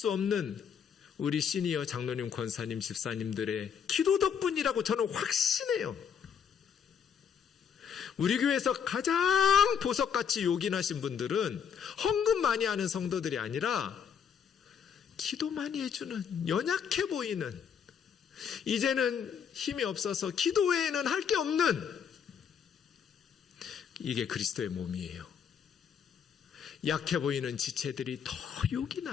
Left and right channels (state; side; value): quieter; right; 7.4 dB